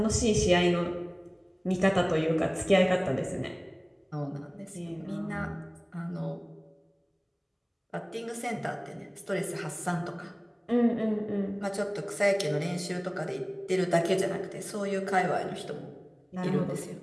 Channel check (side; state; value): both; identical; correlation 1.00